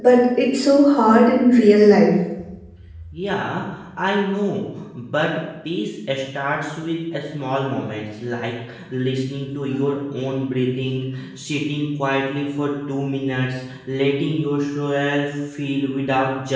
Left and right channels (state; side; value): identical; both; correlation 1.00